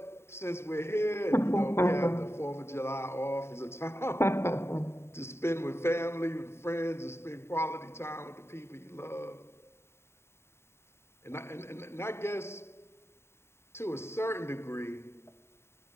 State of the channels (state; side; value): late; right; 0.12 ms